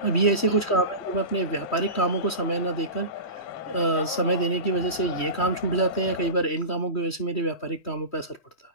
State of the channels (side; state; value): right; late; 3.1 ms